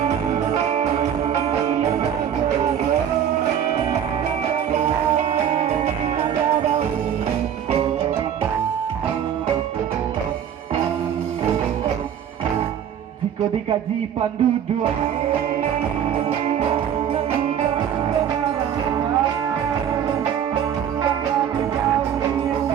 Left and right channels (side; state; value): left; quieter; 9.1 dB